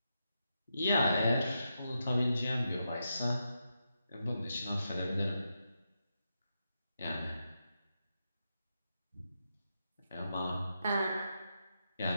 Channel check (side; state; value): both; inverted; correlation -0.85